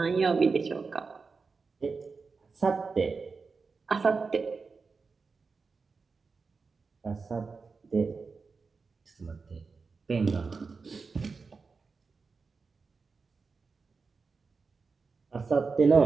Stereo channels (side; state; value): left; quieter; 4.6 dB